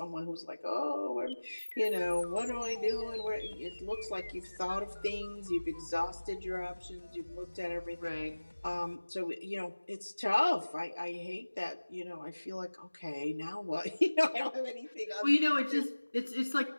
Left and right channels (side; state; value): both; inverted; correlation -1.00